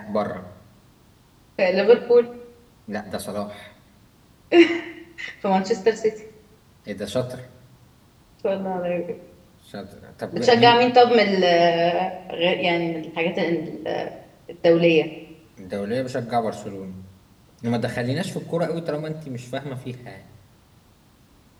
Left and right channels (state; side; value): identical; both; correlation 1.00